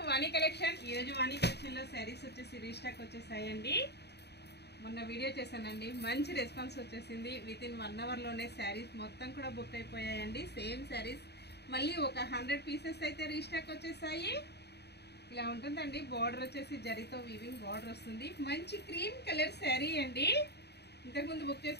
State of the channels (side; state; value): right; late; 0.48 ms